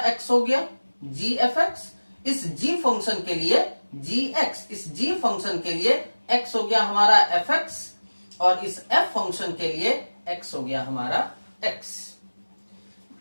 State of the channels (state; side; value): inverted; both; correlation -1.00